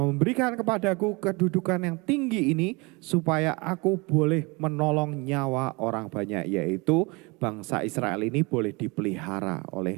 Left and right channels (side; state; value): left; quieter; 27.1 dB